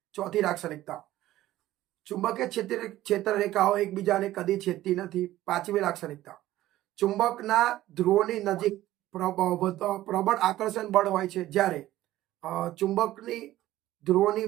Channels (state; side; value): quieter; left; 15.0 dB